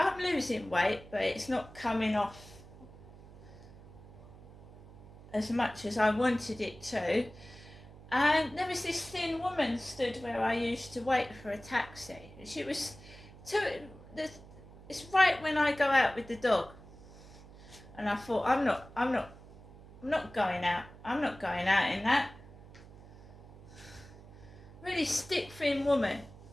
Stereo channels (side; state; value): right; noise; hum, 19 dB below the sound